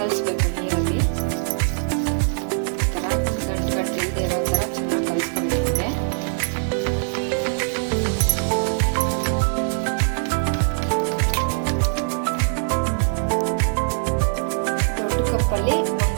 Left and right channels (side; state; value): left; silent; 64 dB below the other